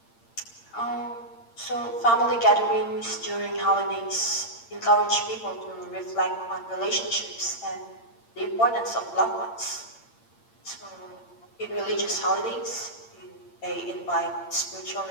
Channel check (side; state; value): right; late; 8.7 ms